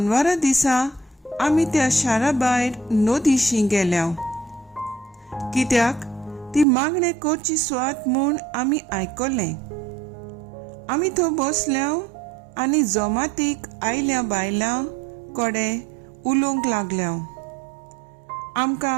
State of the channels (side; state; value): left; drops out; at 6.7 s